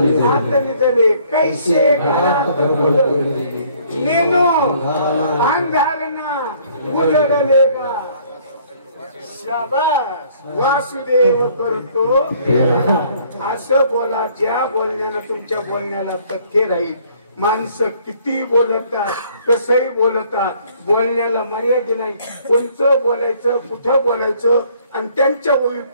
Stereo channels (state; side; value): inverted; both; correlation -0.60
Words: आत निजले, कैसे घरात नेनो अंधारना उजळलेगा. शाबास वासुदेव करतो असं बोला, ज्या बोलण्यानं तुमच्या बोलण्याला तथ्य राहील. माणसं किती बोलतात, कसंही बोलतात, बोलण्याला मर्यादा नाही. कोणचं बोलायचं, कुठं बोलायचं, आणि त्यांच्या